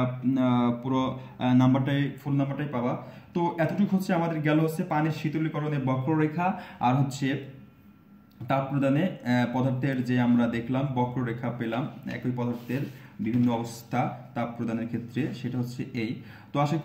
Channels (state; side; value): identical; both; correlation 1.00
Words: পুরো ফুল নাম্বারটাই পাবা। তো এতটুকু হচ্ছে আমাদের গেল হচ্ছে পানির শীতলীকরণের বক্ররেখা, আর হচ্ছে তাপ প্রদানে পদার্থের যে আমরা দেখলাম বক্ররেখা পেলাম, একই পদার্থের বিভিন্ন অবস্থা তাপ প্রদানের ক্ষেত্রে, সেটা হচ্ছে এই। তো আশা